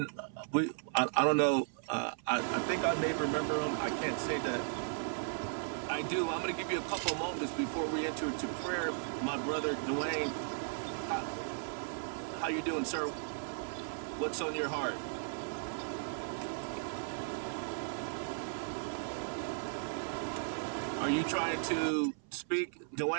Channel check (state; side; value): silent; left; 54 dB below the other